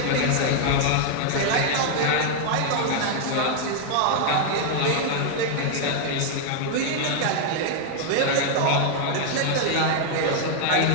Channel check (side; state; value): both; different; correlation 0.00